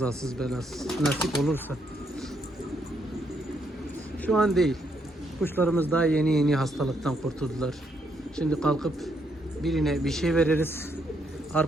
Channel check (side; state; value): both; normal; correlation 0.75